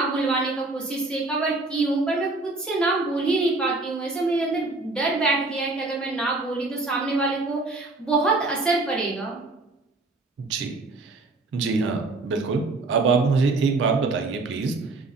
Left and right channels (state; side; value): quieter; left; 3.3 dB